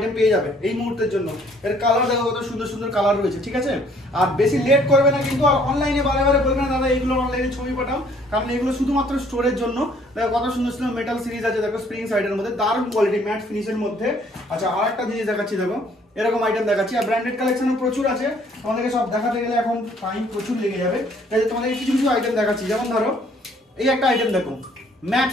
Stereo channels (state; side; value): normal; both; correlation 0.61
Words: পেয়ে যাবে এই মুহূর্তের জন্য। এর কালার দেখো কত সুন্দর সুন্দর কালার রয়েছে, ঠিক আছে। আর বেশি লেট করবে না কিন্তু, আর অনলাইনে বারে বারে বলবে না দাদা এইগুলো অনলাইনে ছবি পাঠাও, কারণ এগুলো শুধুমাত্র স্টোরের জন্য। দেখো কত সুন্দর সুন্দর মেটাল সিরিজ আছে, দেখো স্প্রিং সাইডের মধ্যে দারুণ কোয়ালিটি, ম্যাট ফিনিশের মধ্যে। আচ্ছা আর একটা জিনিস দেখাচ্ছি, দেখো এরকম আইটেম দেখাচ্ছি। আর ব্র্যান্ডেড কালেকশনও প্রচুর আছে, তোমাদেরকে সব দেখাতে গেলে এখন টাইম প্রচুর লেগে যাবে, তাই তোমাদেরকে কিছু কিছু আইটেম দেখাচ্ছি। যেমন ধরো এই একটা আইটেম দেখো ম্যাট